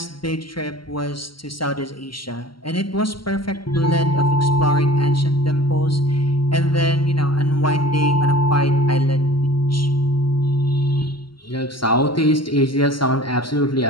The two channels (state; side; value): late; right; 0.73 ms